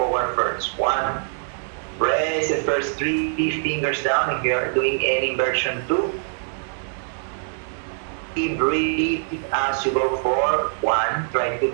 first. 1. Press the first 3 fingers down if you are doing any inversion. 2. Breathe as you go forward. 1. Try to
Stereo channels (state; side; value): silent; left; digital silence